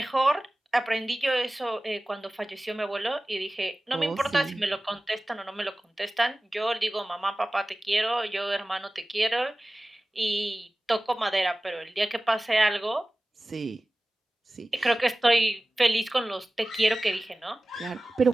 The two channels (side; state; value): both; normal; correlation 0.97